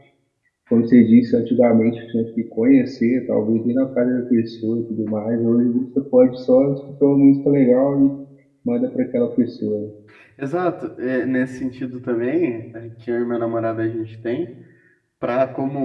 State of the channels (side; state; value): both; identical; correlation 1.00